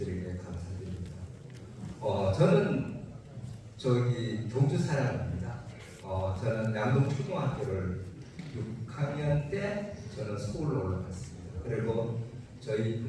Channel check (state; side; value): identical; both; correlation 1.00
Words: 감사드립니다. 저는 저기 경주 사람입니다. 저는 양동초등학교를 6학년 때 저는 서울로 올라갔습니다. 그리고 저희